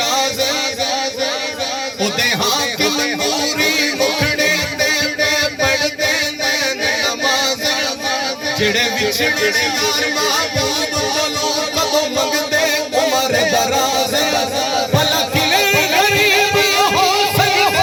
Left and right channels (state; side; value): identical; both; correlation 1.00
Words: राज उदे हाकिम नूरी मुखड़े दे पढ़दे नमाज जिड़े विछड़े यार महबूब कोलों कदों मंगदे उमर दराज भला किले गरीब हो